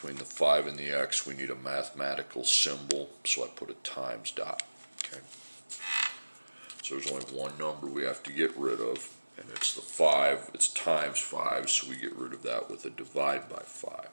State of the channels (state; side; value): inverted; both; correlation -1.00